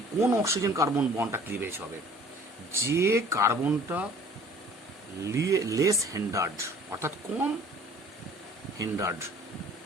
কোন অক্সিজেন কার্বন বন্ডটা ক্লিভেজ হবে? যে কার্বনটা লেস হিন্ডার্ড, অর্থাৎ কম হিন্ডার্ড,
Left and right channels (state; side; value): normal; both; correlation 0.51